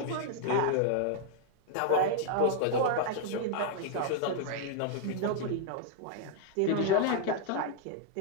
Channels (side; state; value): both; different; correlation 0.00